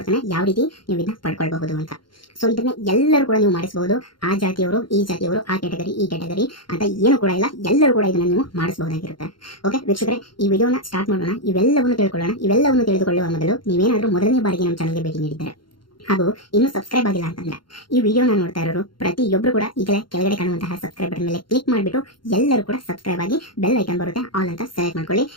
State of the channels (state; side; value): late; right; 0.72 ms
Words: ಯಾವ ರೀತಿ ನೀವು ಇದನ್ನ ಪಡ್ಕೊಳ್ಬಹುದು ಅಂತ. ಸೊ ಇದನ್ನ ಎಲ್ಲರೂ ಕೂಡ ನೀವು ಮಾಡಿಸಬಹುದು. ಆ ಜಾತಿಯವರು, ಈ ಜಾತಿಯವರು, ಆ ಕ್ಯಾಟಗರಿ, ಈ ಕ್ಯಾಟಗರಿ ಅಂತ ಏನು ಕೂಡ ಇಲ್ಲ, ಎಲ್ಲರೂ ಕೂಡ ಇದನ್ನ ನೀವು ಮಾಡಿಸಬಹುದಾಗಿರುತ್ತೆ. ಓಕೆ ವೀಕ್ಷಕರೇ, ಈ ವಿಡಿಯೋನ ಸ್ಟಾರ್ಟ್ ಮಾಡೋಣ. ಇವೆಲ್ಲವನ್ನು ತಿಳ್ಕೊಳ್ಳೋಣ. ಇವೆಲ್ಲವನ್ನು ತಿಳಿದುಕೊಳ್ಳುವ ಮೊದಲು ನೀವೇನಾದರೂ ಮೊದಲನೇ ಬಾರಿಗೆ ನಮ್ಮ ಚಾನಲ್ಗೆ ಭೇಟಿ ನೀಡಿದ್ದಾರೆ ಹಾಗೂ ಇನ್ನೂ ಸಬ್ಸ್ಕ್ರೈಬ್ ಆಗಿಲ್ಲ ಅಂತಂದ್ರೆ, ಈ ವಿಡಿಯೋನ ನೋಡ್ತಾ ಇರೋರು ಪ್ರತಿಯೊಬ್ಬರು ಕೂಡ ಈಗಲೇ ಕೆಳಗಡೆ ಕಾಣುವಂತಹ ಸಬ್ಸ್ಕ್ರೈಬ್ ಬಟನ್ ಮೇಲೆ ಕ್ಲಿಕ್ ಮಾಡಿಬಿಟ್ಟು ಎಲ್ಲರೂ ಕೂಡ ಸಬ್ಸ್ಕ್ರೈಬ್ ಆಗಿ ಬೆಲ್ ಐಕನ್ ಬರುತ್ತೆ, ಆಲ್ ಅಂತ ಸೆಲೆಕ್ಟ್ ಮಾಡ್ಕೊಳ್ಳಿ.